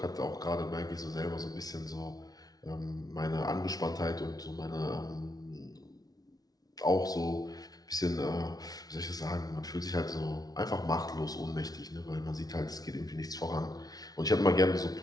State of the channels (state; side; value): late; right; 0.18 ms